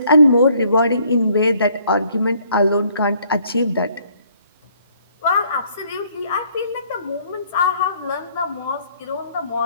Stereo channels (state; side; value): inverted; both; correlation -0.64